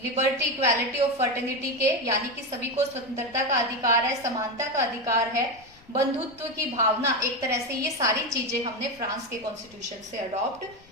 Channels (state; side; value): noise; left; rumble, 26 dB below the sound